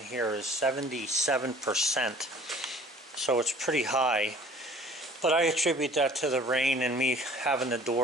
is 77%. So it's pretty high. But I attribute that to the rain and me having the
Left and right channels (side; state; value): both; normal; correlation 0.50